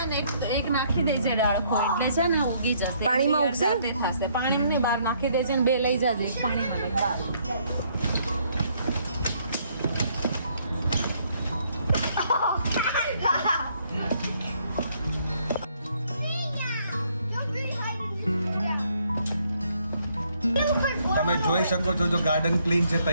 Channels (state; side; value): inverted; both; correlation -0.68